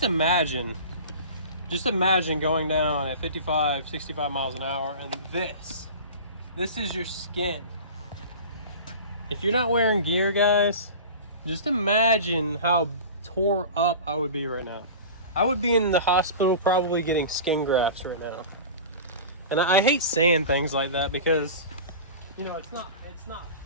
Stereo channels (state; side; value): inverted; both; correlation -0.35